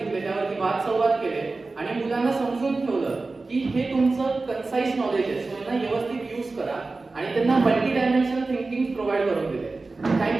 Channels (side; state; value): left; quieter; 3.6 dB